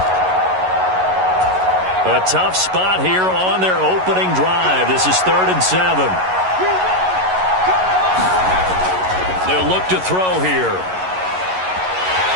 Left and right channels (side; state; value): left; late; 11 ms